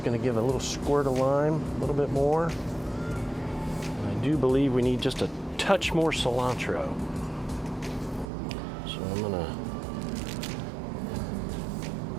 gonna give a little squirt of lime, a little bit more. I do believe we need just a touch more cilantro. So I'm gonna,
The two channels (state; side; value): drops out; left; at 8.3 s